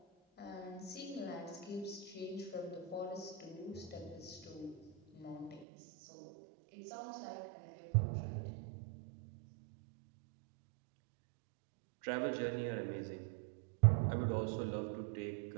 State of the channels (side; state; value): left; drops out; at 5.7 s